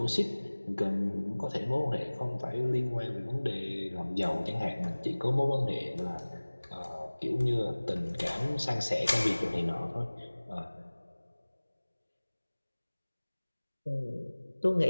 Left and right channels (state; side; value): inverted; both; correlation -1.00